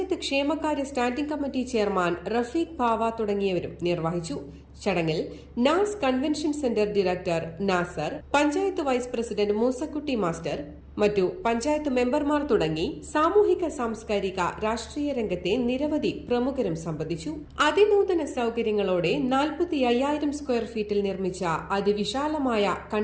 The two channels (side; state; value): both; identical; correlation 1.00